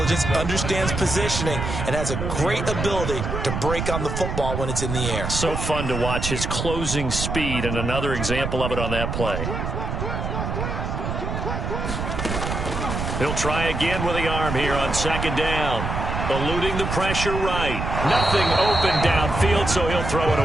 understands positioning, and has a great ability to break on the football when it's in the air. So fun to watch his closing speed, and another example of it on that play. He'll try again with the arm here on 2nd down. Eluding the pressure right. Nothing open downfield, so he'll throw it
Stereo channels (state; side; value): noise; right; rumble, 3 dB below the sound